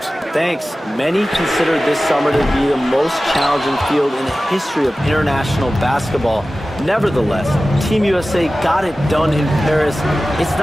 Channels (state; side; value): normal; both; correlation 0.96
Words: Thanks. Many consider this summer to be the most challenging field in the history of international basketball. Nevertheless, Team USA got it done in Paris. It's